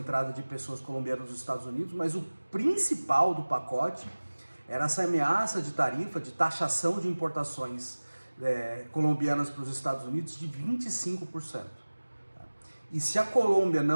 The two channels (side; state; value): both; inverted; correlation -1.00